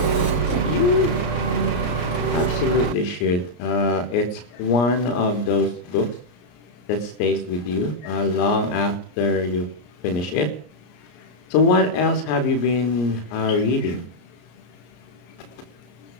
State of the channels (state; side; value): late; right; 34 ms